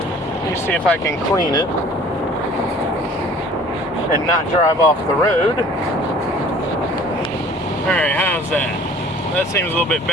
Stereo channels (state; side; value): normal; both; correlation 0.50